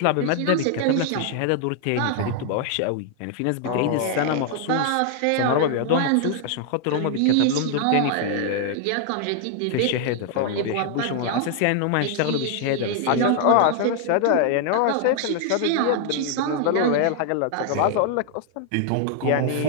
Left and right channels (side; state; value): both; different; correlation 0.00